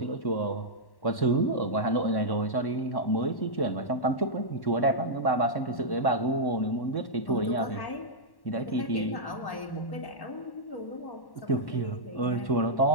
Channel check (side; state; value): right; late; 1.1 ms